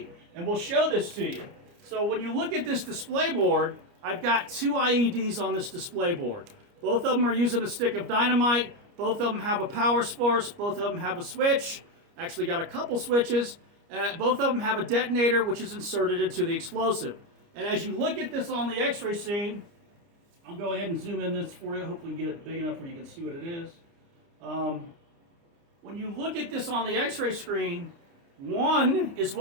And we'll show this to you. So when you look at this display board, I've got 2 IEDs on this display board. Both of them are using a stick of dynamite. Both of them have a power source. Both of them have a switch. Actually got a couple switches. Both of them have a detonator, which is inserted into the explosive. And as you look at this on the X-ray scene, I'll go ahead and zoom in this for you. Hopefully get it big enough where you can see what it is. When you look at this on the X-ray screen, one is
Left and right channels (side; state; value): left; late; 29 ms